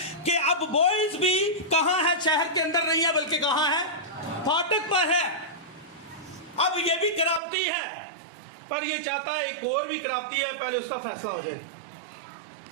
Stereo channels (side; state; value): left; drops out; at 7.4 s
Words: कि अब बॉयज भी कहां है? शहर के अंदर नहीं है, बल्कि कहां है? फाटक पर है। अब ये भी खराबती है, पर ये चाहता है एक और भी खराबती है, पहले उसका फैसला हो जाए।